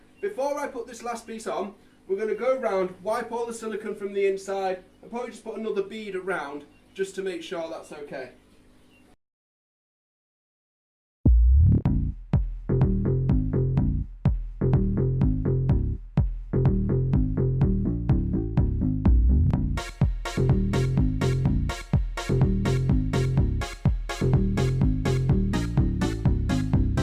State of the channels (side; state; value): both; identical; correlation 1.00